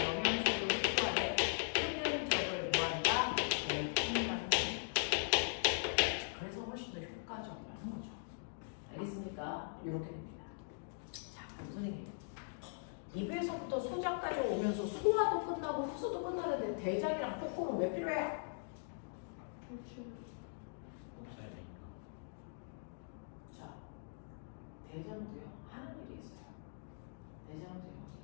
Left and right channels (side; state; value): right; silent; digital silence